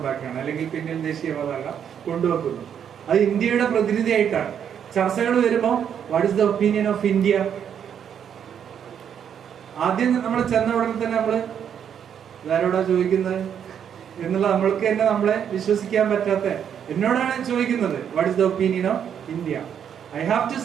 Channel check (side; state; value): left; quieter; 8.5 dB